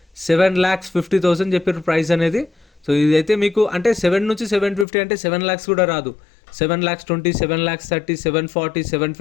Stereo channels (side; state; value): right; drops out; at 4.9 s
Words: 7,50,000 చెప్పారు ప్రైస్ అనేది. సో ఇదైతే మీకు అంటే 7 నుంచి 750 అంటే 7 lakhs కూడా రాదు. 7,20,000, 7,30,000, 740,